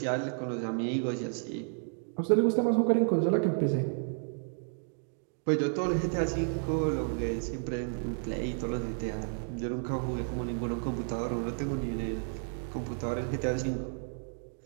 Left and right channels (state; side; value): silent; left; 57 dB below the other